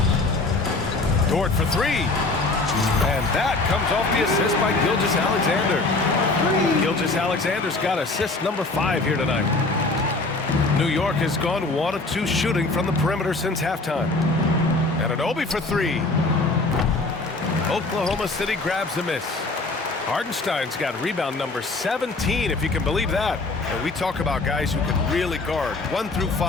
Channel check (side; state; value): right; quieter; 3.3 dB